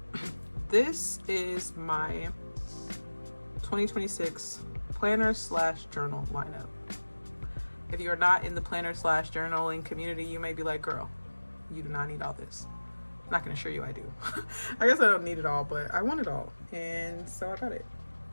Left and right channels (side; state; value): both; inverted; correlation -1.00